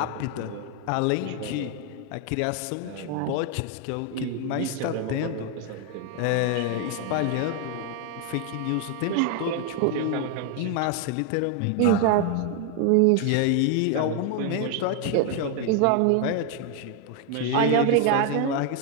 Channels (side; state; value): both; different; correlation 0.01